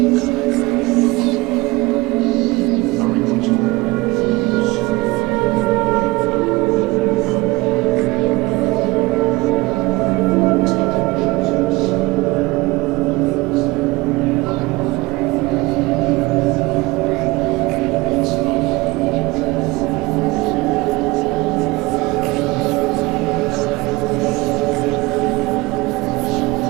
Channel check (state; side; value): quieter; left; 22.0 dB